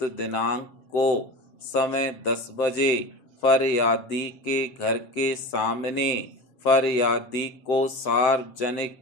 दिनांक को समय 10 बजे फरियादी के घर के सामने फरियादी को सार्वजनिक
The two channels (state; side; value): late; right; 7.6 ms